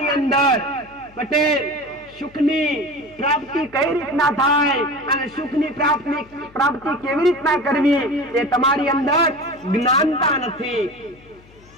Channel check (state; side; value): noise; left; hum, 26 dB below the sound